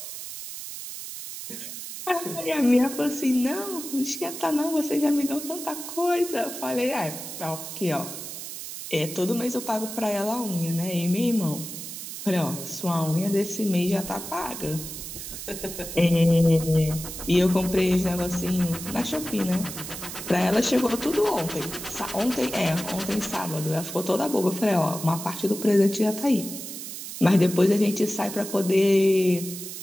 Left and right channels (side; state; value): right; noise; hiss, 9 dB below the sound